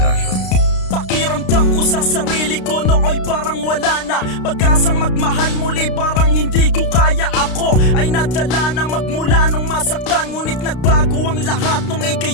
Pakiramdam ko sa sarili ko nooy parang wala na. Pag-asang magmahal muli parang hindi ko kaya. Ako ay nadala na magmula nung masaktan, ngunit nagbago ang lahat nung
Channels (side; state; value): right; late; 32 ms